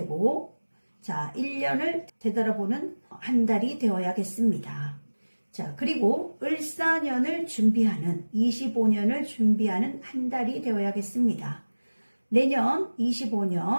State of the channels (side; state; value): both; inverted; correlation -1.00